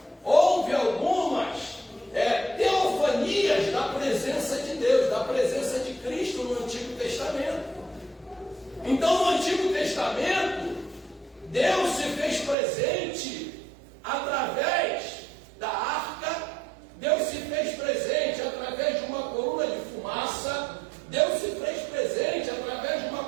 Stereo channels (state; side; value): drops out; left; at 12.6 s